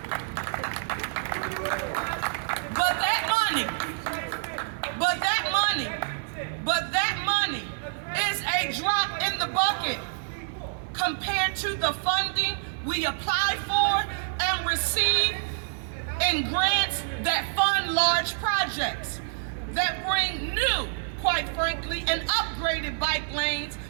But that money is a drop in the bucket compared to the funding we apply for and receive in grants that fund large projects that bring new, quite frankly, and upgraded bike lanes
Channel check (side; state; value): left; silent; digital silence